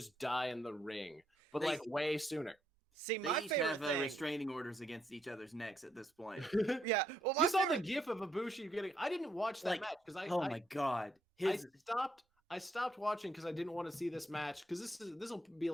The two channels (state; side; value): normal; both; correlation 0.75